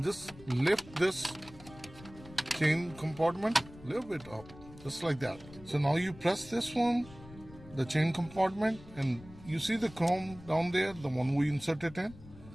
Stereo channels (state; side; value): noise; left; rumble, 19 dB below the sound